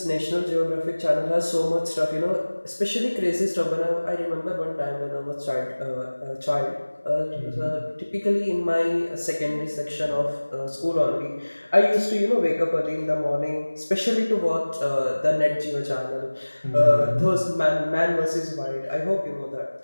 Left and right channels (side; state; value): both; inverted; correlation -1.00